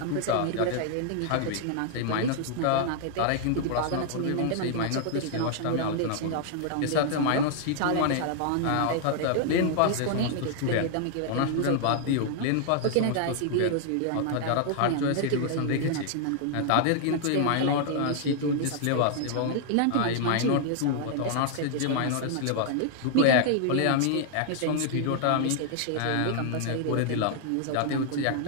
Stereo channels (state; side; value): different; both; correlation -0.01